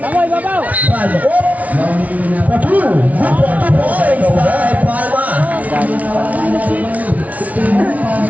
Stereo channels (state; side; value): late; left; 0.070 ms